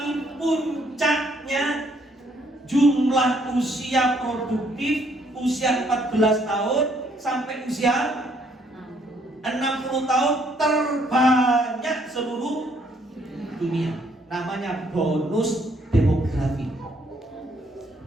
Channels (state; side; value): normal; both; correlation 0.68